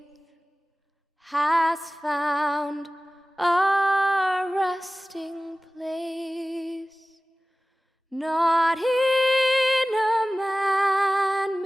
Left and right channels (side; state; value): both; normal; correlation 0.97